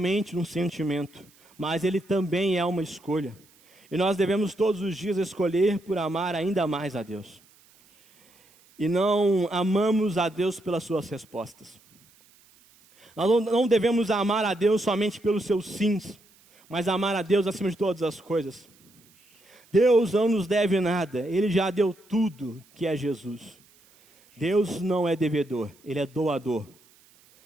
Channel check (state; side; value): noise; right; hiss, 30 dB below the sound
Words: um sentimento, mas ele também é uma escolha. E nós devemos todos os dias escolher por amar ainda mais a Deus. E não amamos a Deus pelas suas respostas. Nós não devemos amar a Deus somente pelos seus sims, mas amar a Deus acima de todas as coisas. Deus não nos deve nada, Ele já deu tudo que é Jesus. Deus não é devedor, Ele é doador.